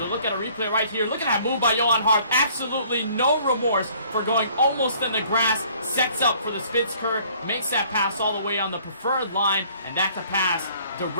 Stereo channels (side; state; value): both; inverted; correlation -0.58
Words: we look at a replay right here, look at that move by Johan Harth. Absolutely no remorse for going almost in the grass, sets up for the Spitzker, makes that pass all the way on the preferred line, and that's a pass